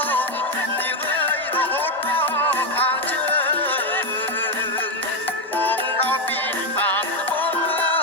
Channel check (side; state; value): both; normal; correlation 0.07